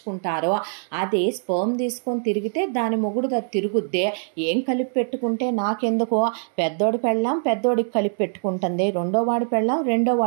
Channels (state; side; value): silent; left; digital silence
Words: అది స్పర్మ్ తీసుకొని తిరిగితే దాని మొగుడు అది తిరుగుద్దే. ఏం కలిపి పెట్టుకుంటే నాకెందుకో, పెద్దోడి పెళ్ళాం పెద్దోడికి కలిపి పెట్టుకుంటుంది, రెండో వాడి పెళ్ళాం రెండో